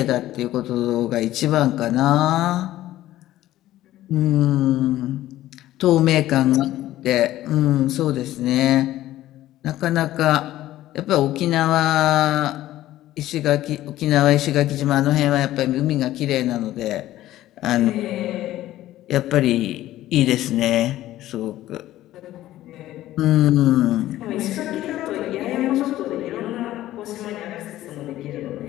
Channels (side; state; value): right; quieter; 14.5 dB